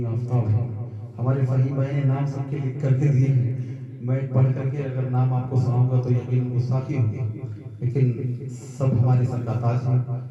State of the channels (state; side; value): identical; both; correlation 1.00